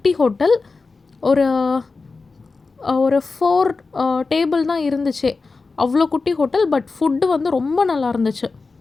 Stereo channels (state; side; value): quieter; right; 4.1 dB